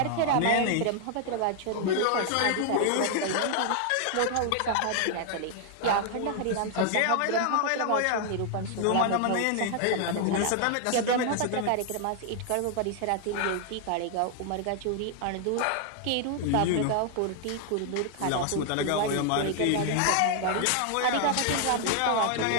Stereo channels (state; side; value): different; both; correlation 0.00